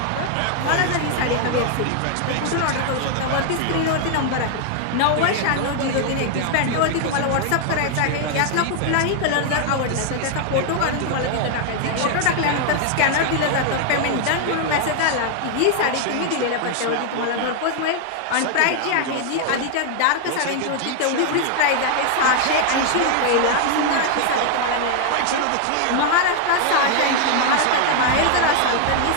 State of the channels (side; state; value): both; different; correlation 0.00